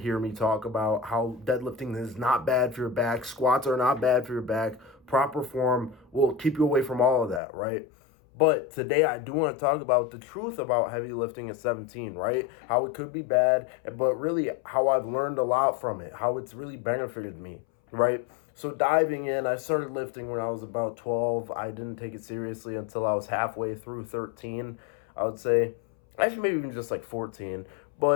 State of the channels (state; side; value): drops out; right; at 7.4 s